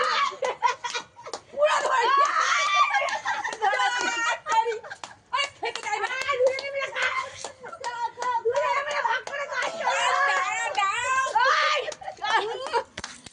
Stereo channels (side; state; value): both; identical; correlation 1.00